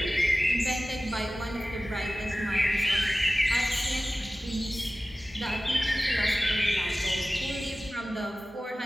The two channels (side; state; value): both; normal; correlation 0.96